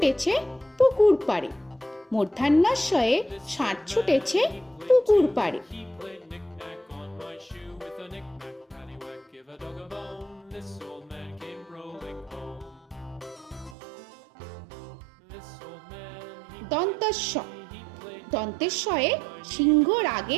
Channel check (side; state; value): left; drops out; at 13.8 s